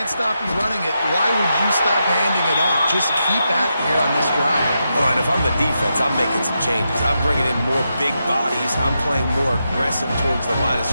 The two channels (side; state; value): both; inverted; correlation -0.85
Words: stop you running it, why would you stop handing it off? Just keep at it here on this drive. Well, and if I'm the defense, I'm making some changes. I'm bringing in more big bodies. I'm playing more aggressive towards the line of